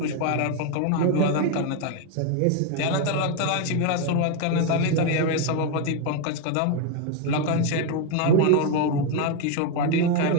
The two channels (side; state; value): both; different; correlation 0.01